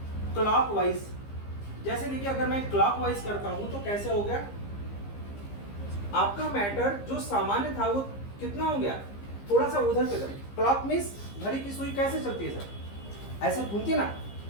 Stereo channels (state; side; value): late; right; 15 ms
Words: क्लॉकवाइज, जैसे देखिए अगर मैं क्लॉकवाइज करता हूं तो कैसे हो गया, आपका मैटर जो सामान्य था वो कितना हो गया, थोड़ा सा उधर की तरफ। क्लॉक मींस घड़ी की सुई कैसे चलती है सर, ऐसे घूमती है ना,